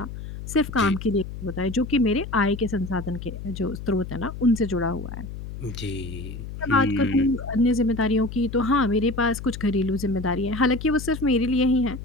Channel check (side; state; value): left; noise; hum, 10 dB below the sound